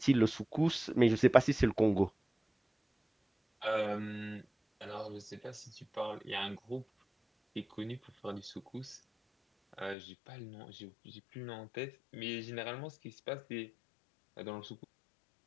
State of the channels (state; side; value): drops out; right; at 10.0 s